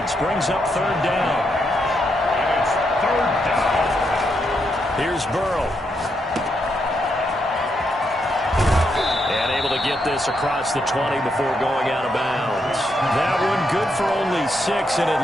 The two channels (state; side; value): normal; both; correlation 0.80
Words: brings up 3rd down. And it's 3rd down. Here's Burrow. And able to get this across the 20 before going out of bounds. That one good for only 6, and it